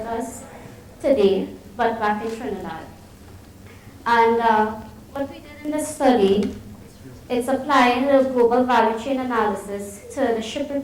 us today, but back in Trinidad. And what we did in this study, it's applying the global value chain analysis to the ship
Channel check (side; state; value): both; identical; correlation 1.00